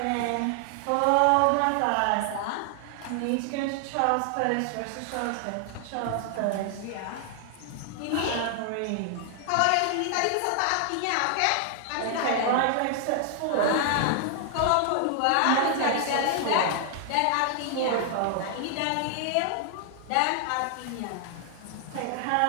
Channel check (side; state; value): both; different; correlation 0.00